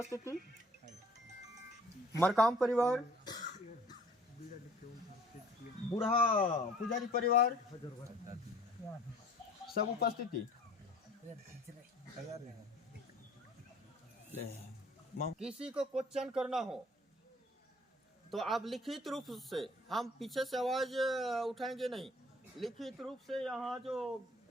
मरकाम परिवार, बूढ़ा पुजारी परिवार सब उपस्थिति। किसी को क्वेश्चन करना हो तो आप लिखित रूप से, हम पीछे से आवाज उठाएंगे नहीं, लिखित रूप से यहाँ जो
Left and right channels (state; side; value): normal; both; correlation 0.52